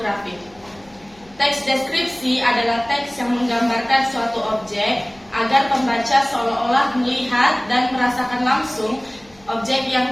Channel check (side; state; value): left; noise; hum, 29 dB below the sound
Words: Teks deskripsi adalah teks yang menggambarkan suatu objek agar pembaca seolah-olah melihat dan merasakan langsung objek yang